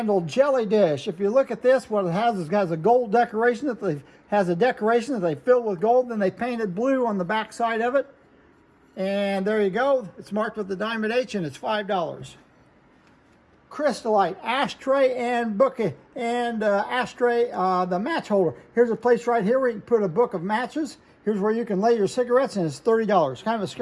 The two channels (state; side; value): identical; both; correlation 1.00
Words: jelly dish. If you look at this, what it has is a gold decoration that they fill with gold, then they painted blue on the back side of it, and there you go. It's marked with the diamond H, and it's $5. Crystallite ashtray and bouquet and ashtray, the match holder. Here's a place right here where you can put a book of matches. Here's where you can lay your cigarettes, and it's $30. Kind of a